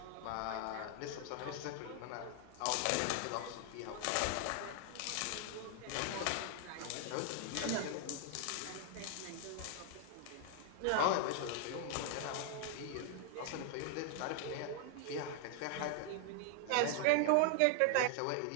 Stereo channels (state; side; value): different; both; correlation 0.00